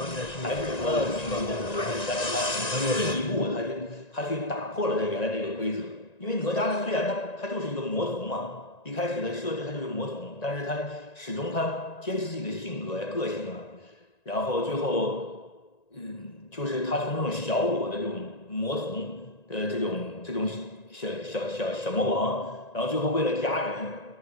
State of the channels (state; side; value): late; right; 1.9 ms